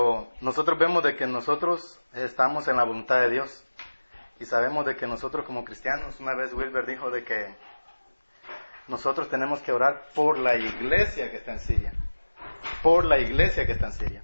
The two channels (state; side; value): inverted; both; correlation -1.00